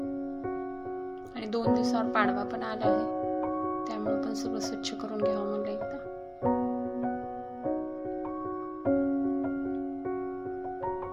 आणि 2 दिवसावर पाडवा पण आला आहे, त्यामुळे पण सगळं स्वच्छ करून घ्यावं म्हणलं एकदा.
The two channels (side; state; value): both; identical; correlation 1.00